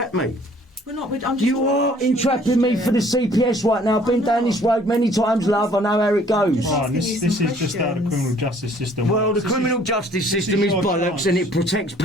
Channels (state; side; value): normal; both; correlation 0.57